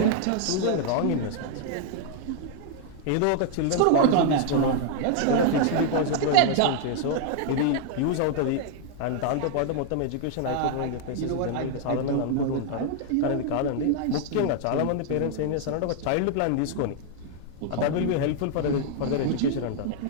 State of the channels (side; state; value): both; different; correlation 0.00